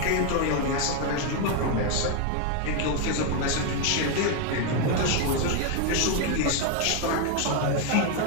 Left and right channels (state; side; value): different; both; correlation 0.01